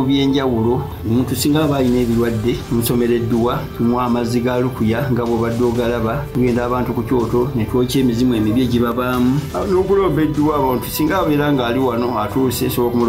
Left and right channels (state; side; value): identical; both; correlation 1.00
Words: by'enjawulo omuntu singa aba alina ebirwadde musomereddwa tunywa amazzi ga lukuya nga bw'obadde ogalaba tugenda abantu ku kyoto ne twokya emizimu emibi egibabaamu n'okulomba edduwa abantu singa abeera nga ali wano atuuse sobola